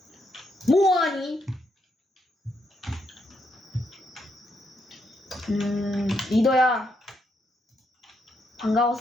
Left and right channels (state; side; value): normal; both; correlation 0.78